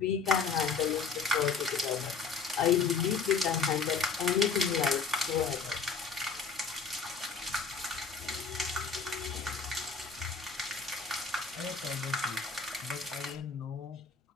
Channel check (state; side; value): quieter; right; 5.1 dB